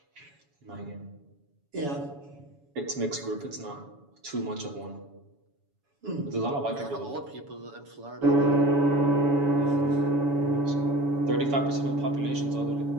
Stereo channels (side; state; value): left; late; 7.1 ms